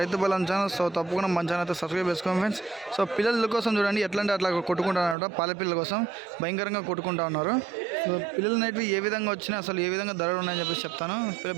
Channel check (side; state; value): left; drops out; at 5.2 s